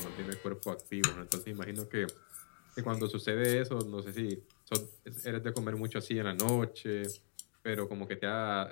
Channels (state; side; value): silent; right; 51 dB below the other